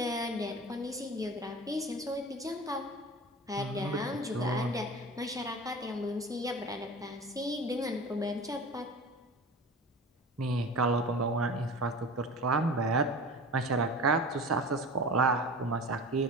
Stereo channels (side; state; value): both; normal; correlation 0.35